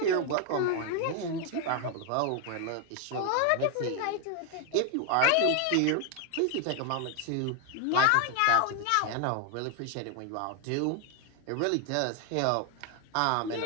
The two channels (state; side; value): different; both; correlation 0.01